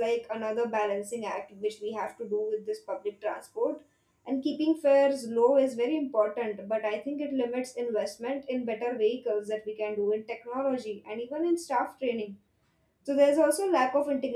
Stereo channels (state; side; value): identical; both; correlation 1.00